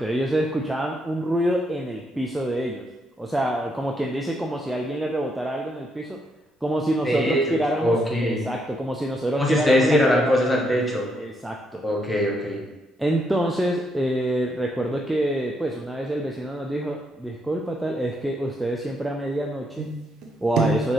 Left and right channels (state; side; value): normal; both; correlation 0.76